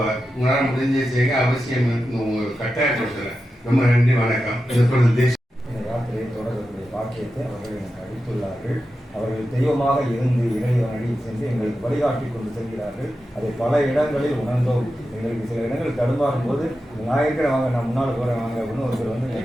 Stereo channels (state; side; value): normal; both; correlation 0.91